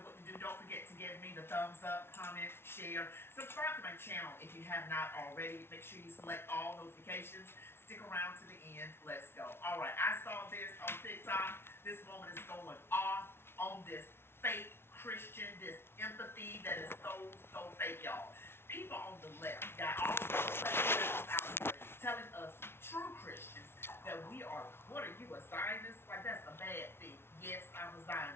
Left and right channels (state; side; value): late; right; 0.12 ms